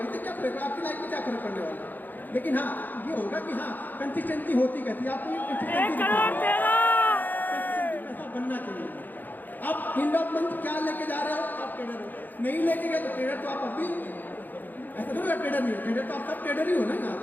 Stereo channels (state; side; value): late; right; 0.086 ms